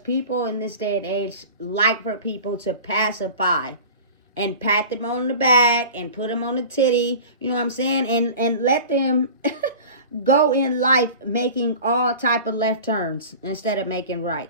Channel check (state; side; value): inverted; both; correlation -0.38